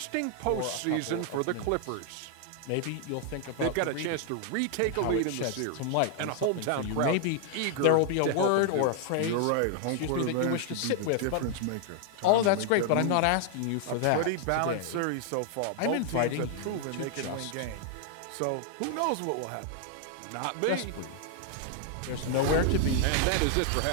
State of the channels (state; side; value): different; both; correlation 0.00